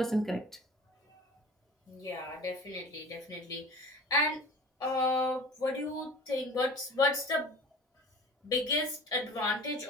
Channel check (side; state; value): both; normal; correlation 0.40